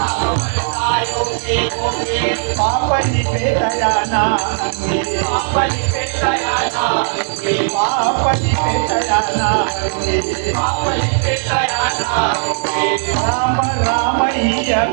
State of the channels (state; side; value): silent; left; digital silence